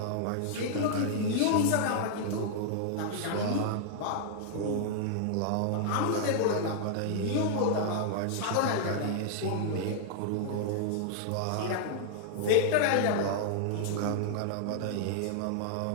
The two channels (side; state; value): both; different; correlation 0.00